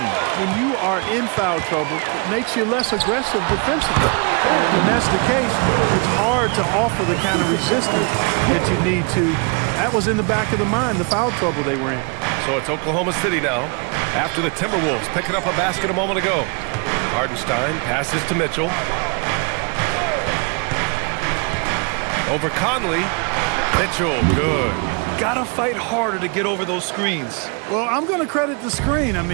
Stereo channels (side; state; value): left; quieter; 33.9 dB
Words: When you are in foul trouble, it makes you less aggressive defensively. And when that's the case, it's hard to offer the kind of resistance that you need to That was in the back of the mind, the foul trouble they were in. So it's Oklahoma City now, after the Timberwolves picking up a basket a moment ago. Hardenstein passes to Mitchell. Over Conley. Mitchell, good. Gotta fight harder to get over those screens. Well, I'm going to credit the screen. I